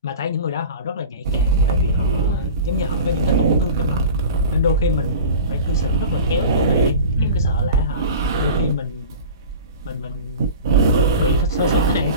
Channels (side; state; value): both; inverted; correlation -0.36